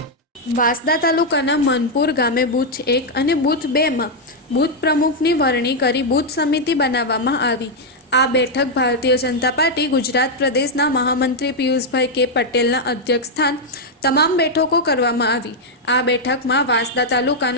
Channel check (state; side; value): normal; both; correlation -0.01